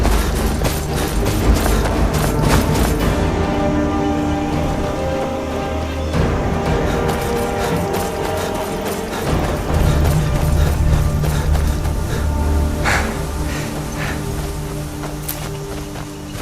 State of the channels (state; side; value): identical; both; correlation 1.00